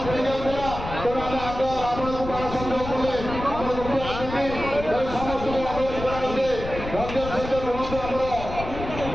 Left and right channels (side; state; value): left; noise; rumble, 9 dB below the sound